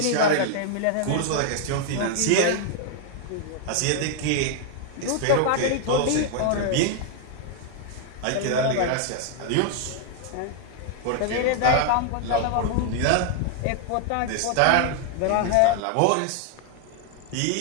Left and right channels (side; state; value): both; different; correlation 0.00